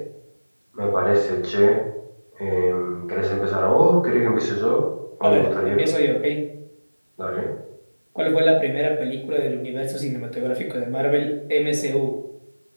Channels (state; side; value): inverted; both; correlation -1.00